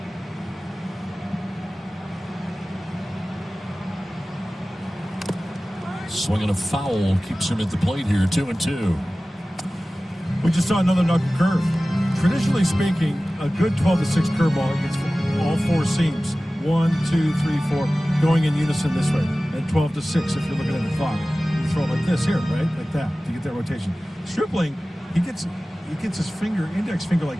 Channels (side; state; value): both; normal; correlation 0.97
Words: Swinging a foul keeps him at the plate here, 2-2. We just saw another knuckle curve. Traditionally speaking, a good 12-6 curveball gets all 4 seams. 1, 2, 3, 4, going in unison this way. And 12-6 if you're looking at the clock. You throw it like this here, right? Like that to get that rotation. Stripling, he gets his finger, index finger